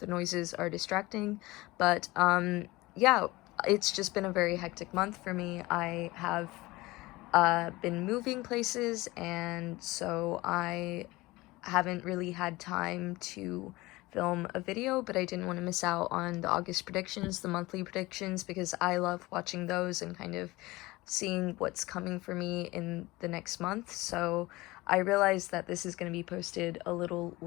noises are distracting, but yeah, it's just been a very hectic month for me. I have been moving places, and so I haven't really had time to film a video, but I didn't want to miss out on the August predictions, the monthly predictions, because I love watching those and kind of seeing what's coming for me in the next month. So I realized that this is going to be posted a little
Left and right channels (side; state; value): right; quieter; 20.6 dB